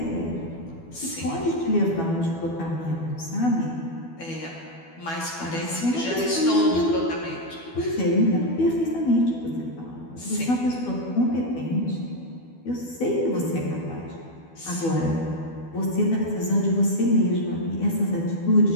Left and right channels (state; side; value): late; right; 12 ms